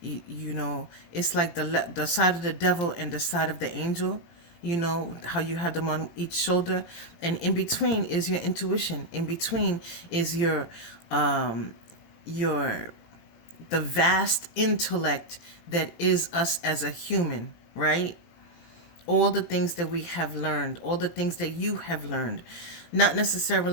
it's like the side of the devil and the side of the angel. You know how you have them on each shoulder, and in between is your intuition. In between is your the vast intellect that is us as a human, right? All the things that we have learned, all the things that you have learned, not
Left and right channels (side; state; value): right; late; 17 ms